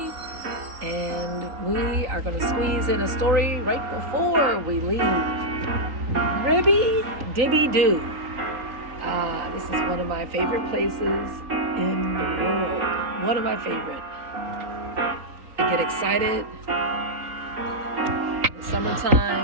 And we are going to squeeze in a story right before we leave. Ribby Dibby Doo. This is one of my favorite places in the world. One of my favorite. I get excited in the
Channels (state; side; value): late; left; 3.9 ms